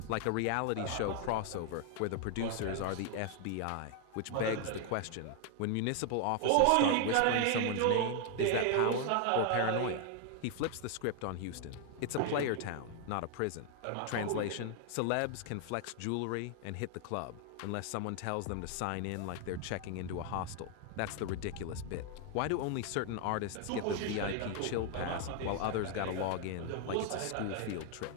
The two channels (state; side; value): different; both; correlation 0.00